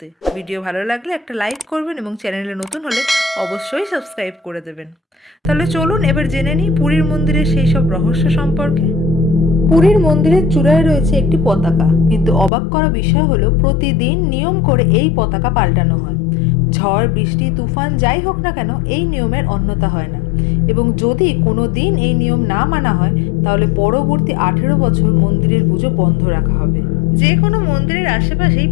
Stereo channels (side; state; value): right; drops out; at 12.5 s